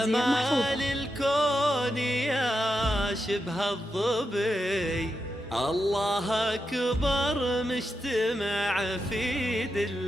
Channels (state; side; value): normal; both; correlation 0.86